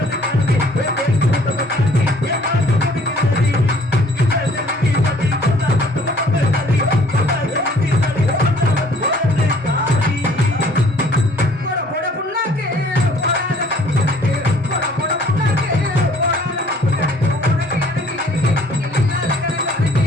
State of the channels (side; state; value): both; normal; correlation 0.57